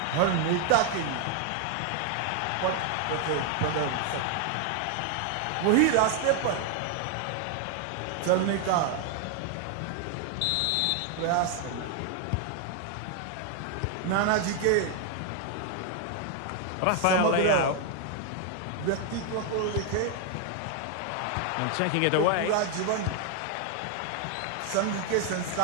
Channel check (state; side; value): different; both; correlation 0.00